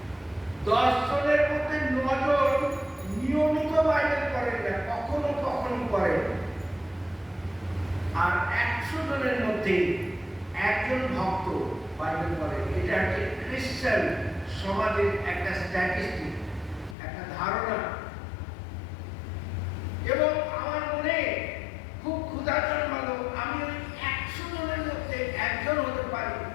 10 জনের মধ্যে 9 জন নিয়মিত বাইবেল পড়েন না, কখনো কখনো পড়েন। আর 100 জনের মধ্যে একজন ভক্ত বাইবেল পড়েন। এটা একটা খ্রিস্টান সমাজের একটা স্ট্যাটিস্টিক, একটা ধারণা। এবং আমার মনে খুব ক্ষুধা জন্মালো, আমি ওই 100 জনের মধ্যে একজন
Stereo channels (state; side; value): drops out; right; at 16.9 s